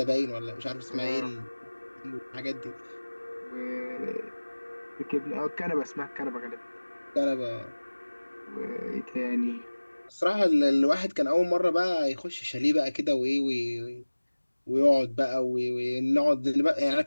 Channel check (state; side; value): inverted; both; correlation -1.00